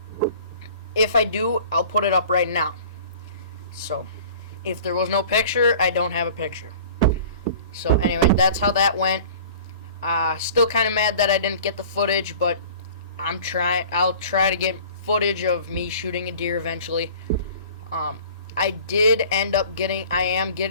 if I do, I'll put it up right now. So if there was no picture, I don't have a picture. So anyway, that's how that went. Still kind of mad that I didn't get the footage, but I'll try to get footage of me shooting a deer eventually. I am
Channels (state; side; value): inverted; both; correlation -0.45